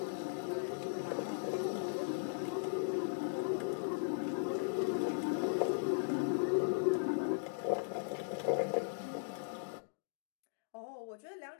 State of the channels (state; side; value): silent; right; digital silence